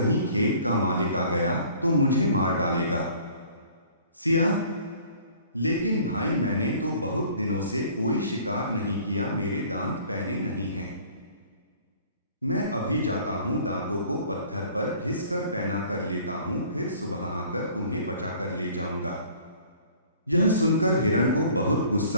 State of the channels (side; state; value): both; inverted; correlation -0.52